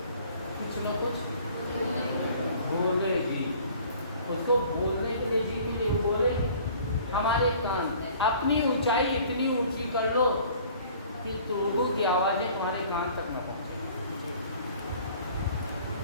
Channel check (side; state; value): both; inverted; correlation -0.51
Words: कुछ ना कुछ बोलेगी, उसको बोलने के लिए जी मिले, वो बोलेगी। हमारे कान अपनी ऊंचाई इतनी ऊंची कर लो कि लोगों की आवाज़ें तुम्हारे कान तक न पहुँचे।